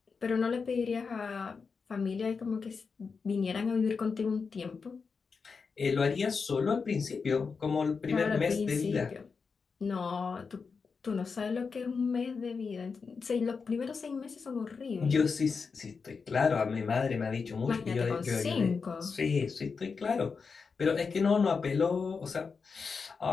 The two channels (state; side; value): quieter; right; 5.2 dB